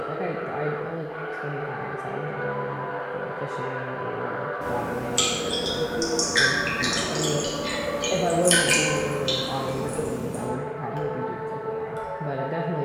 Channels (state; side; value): identical; both; correlation 1.00